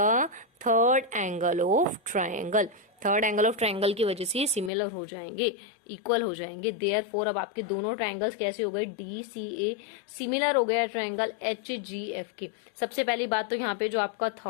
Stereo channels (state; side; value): drops out; right; at 4.7 s